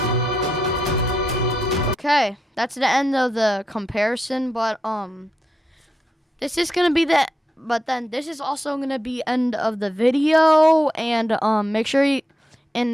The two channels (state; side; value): normal; both; correlation 0.85